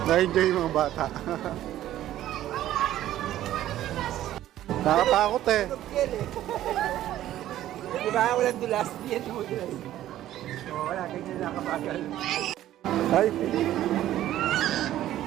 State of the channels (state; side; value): quieter; left; 13.2 dB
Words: Na-enjoy yung mga bata. Nakatakot eh. Diba, walang dulas. Yan mo dulas. Wala, ganyan nakabagal. Ay.